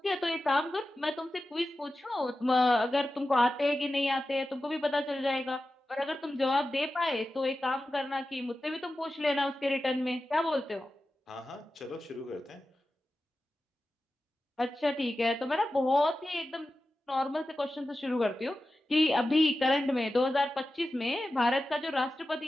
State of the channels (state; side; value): normal; both; correlation 0.93